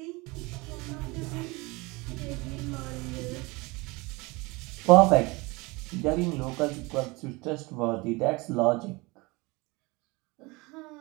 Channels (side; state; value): left; quieter; 24.7 dB